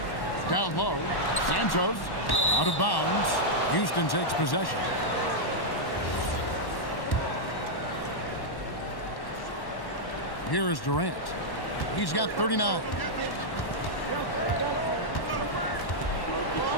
Down low, Santos, out of bounds, Houston takes possession. Here is Durant. He's got 39.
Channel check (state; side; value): late; right; 1.1 ms